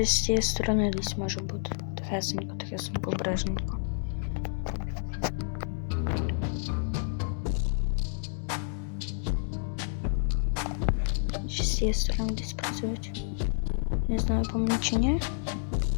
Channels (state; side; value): silent; right; digital silence